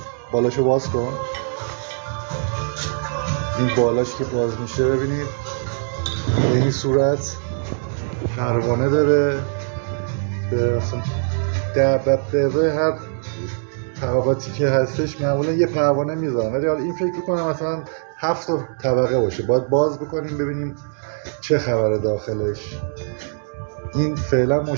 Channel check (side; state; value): left; silent; digital silence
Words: بالاشو باز کن. این بالاش که باز میشه ببینید به این صورت پروانه داره. در هر طبقاتی که هستش معمولا یه پروانه میذارن، ولی حالا این فکر کنم مثلا 7 طبقه باشه. باید باز بکنیم ببینیم چه خبره داخلش. این فعلا